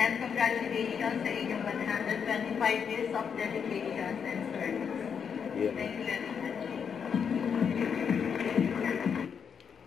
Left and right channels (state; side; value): quieter; right; 7.0 dB